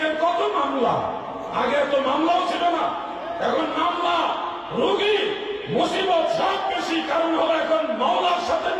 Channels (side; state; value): both; identical; correlation 1.00